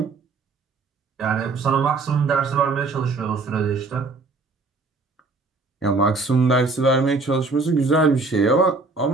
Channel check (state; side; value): quieter; left; 3.8 dB